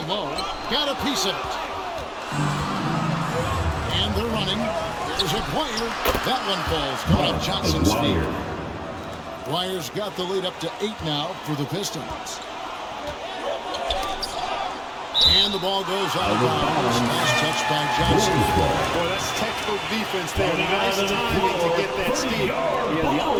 low, got a piece of it. And they're running. There's a Dwyer. That one falls. Coming up Johnson's feet. Dwyer's got the lead up to 8 now for the Pistons. And the ball goes out of bounds. Nice touch by Johnson. Boy, that's textbook defense there. Nice timing to get that steal. Yeah, the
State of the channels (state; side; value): identical; both; correlation 1.00